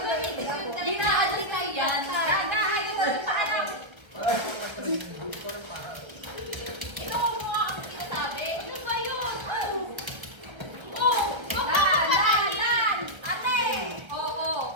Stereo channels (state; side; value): late; left; 1.3 ms